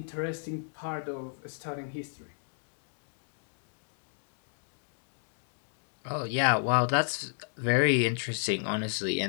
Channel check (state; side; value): silent; right; digital silence